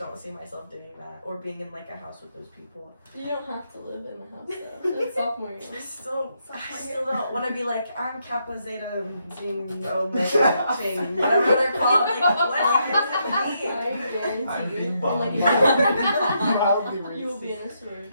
see myself doing that or being in like a house with those people. you don't have to live in a house though. It's sophomore year. I still don't want to be like, I'm Kappa Zeta Zine Omega Chain, whatever they're called. Like, what does it mean? I guarantee I'm you. being And, bummed. like, you will be in a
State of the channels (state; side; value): inverted; both; correlation -0.78